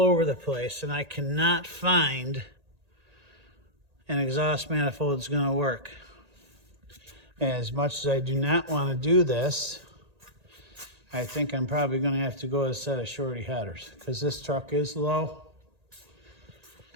over the place, and I cannot find an exhaust manifold that's going to work. And as much as I do not want to do this, I think I'm probably going to have to go with a set of shorty headers, because this truck is low.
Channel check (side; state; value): left; late; 1.8 ms